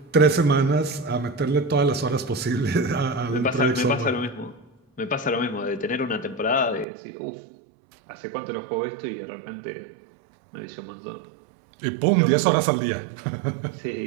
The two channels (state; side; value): drops out; left; at 6.9 s